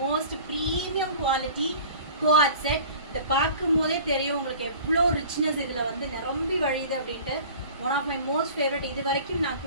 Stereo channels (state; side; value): inverted; both; correlation -0.43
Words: premium quality quad set. இந்த பார்க்கும் போதே தெரியும் உங்களுக்கு எவ்வளோ ரிச்னஸ் இதில் வந்து நிரம்பி வழியுது அப்படின்ட்டு. One of my most favourite. இது வரைக்கும் நான்